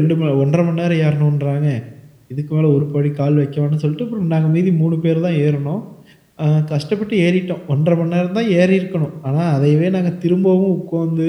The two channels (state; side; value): identical; both; correlation 1.00